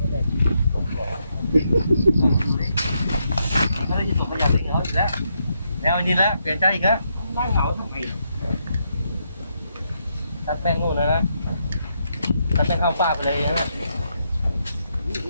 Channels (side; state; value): both; inverted; correlation -0.79